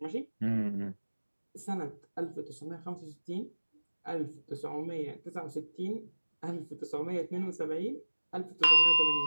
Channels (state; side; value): inverted; both; correlation -1.00